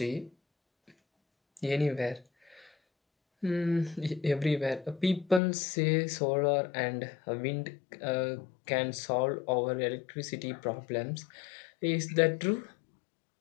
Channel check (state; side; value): drops out; right; at 5.4 s